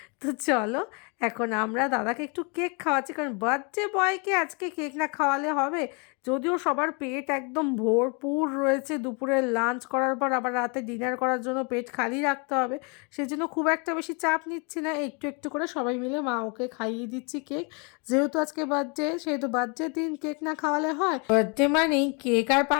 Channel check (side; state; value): right; quieter; 33.6 dB